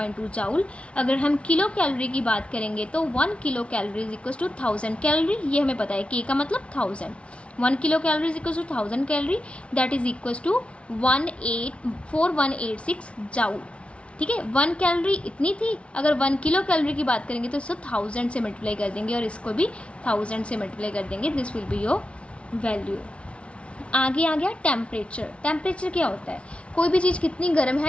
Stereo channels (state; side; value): late; right; 0.060 ms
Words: जाउल। अगर हम किलो कैलोरी की बात करेंगे तो 1 kilo calorie is equal to 1000 calorie, ये हमें पता है, के का मतलब 1000। 1 kilo calorie is equal to 1000 calorie, that is equal to 4186 joule. ठीक है, 1 कैलोरी इतनी थी, अगर 1 किलो कैलोरी की बात करेंगे तो इसको 1000 से मल्टीप्लाई कर देंगे और इसको भी 1000 से मल्टीप्लाई कर देंगे, this will be your value. आगे आ गया टेम्परेचर। टेम्परेचर क्या होता है? कोई भी चीज़ कितनी गर्म